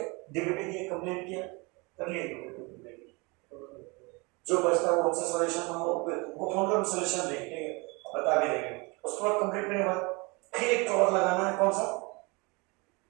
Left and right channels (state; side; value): quieter; left; 27.6 dB